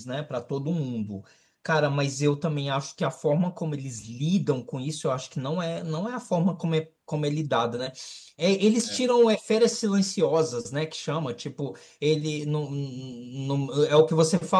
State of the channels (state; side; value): identical; both; correlation 1.00